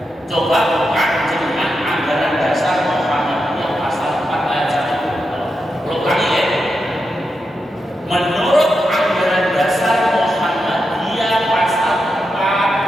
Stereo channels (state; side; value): normal; both; correlation 0.87